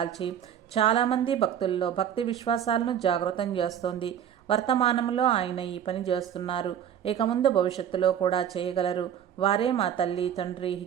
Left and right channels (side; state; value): left; quieter; 9.4 dB